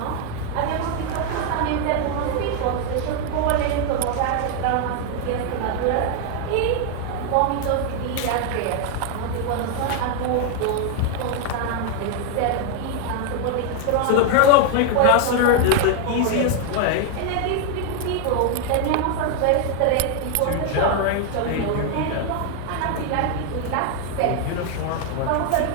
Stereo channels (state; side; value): different; both; correlation 0.00